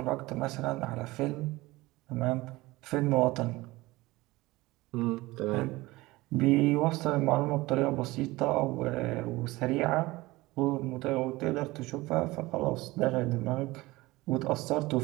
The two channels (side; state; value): left; quieter; 20.2 dB